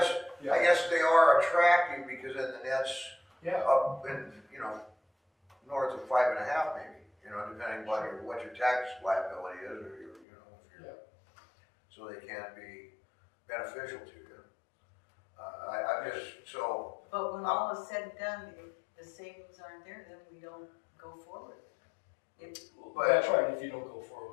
guess they are attractive because then the net's Yeah, up in, north of 5.5 maybe, depending on what your tax liability is, or if you're, so they can be beneficial to you. I'm just, so, But when all is said and done, if the savings aren't there, then we don't go forward. well, that's right, if you don't go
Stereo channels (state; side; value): drops out; right; at 10.2 s